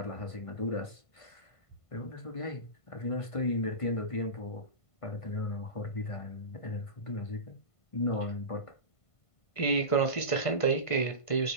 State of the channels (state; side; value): late; right; 1.5 ms